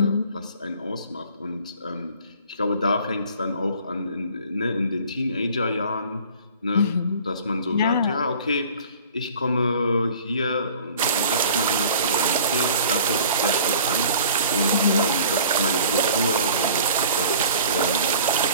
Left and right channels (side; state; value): both; inverted; correlation -0.48